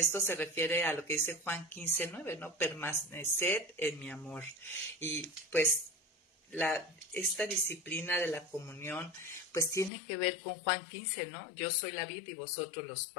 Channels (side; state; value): right; drops out; at 9.9 s